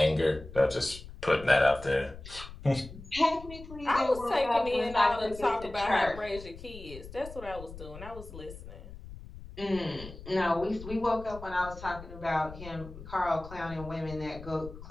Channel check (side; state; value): left; noise; rumble, 14 dB below the sound